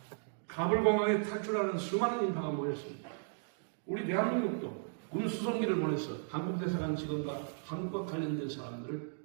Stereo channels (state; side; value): silent; left; digital silence